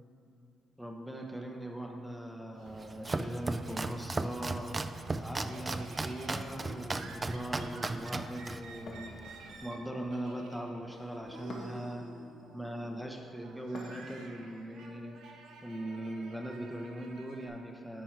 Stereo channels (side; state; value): both; normal; correlation 0.91